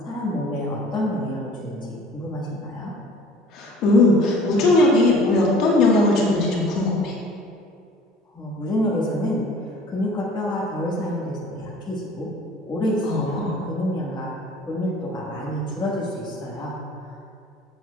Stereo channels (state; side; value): normal; both; correlation 0.49